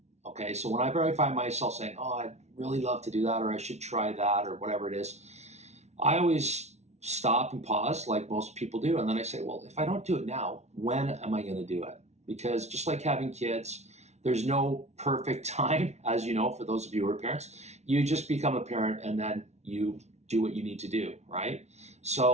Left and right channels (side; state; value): left; late; 0.32 ms